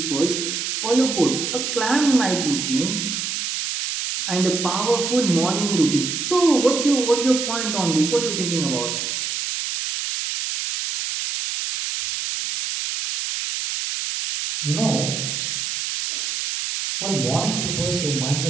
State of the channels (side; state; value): right; noise; hiss, 3 dB below the sound